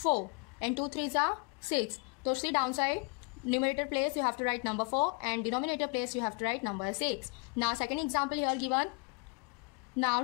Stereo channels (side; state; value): right; quieter; 33.0 dB